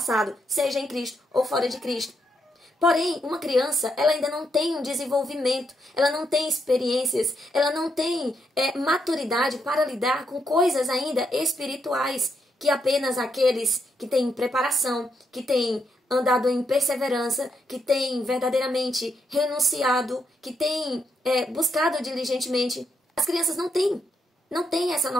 seja em Cristo ou fora de Cristo. Porém, uma criança, ela ainda não tem um desenvolvimento, ela não tem experiências, ela não tem maturidade para lidar com coisas ainda espirituais, que apenas aqueles que têm preparação, que têm andado em perseverança, que tem verdadeiramente renunciado, que tem buscado diligentemente. As crianças não têm essa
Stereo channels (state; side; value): normal; both; correlation 0.79